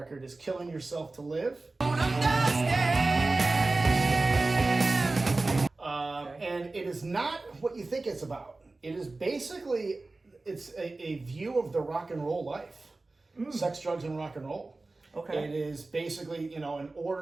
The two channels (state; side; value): quieter; left; 3.3 dB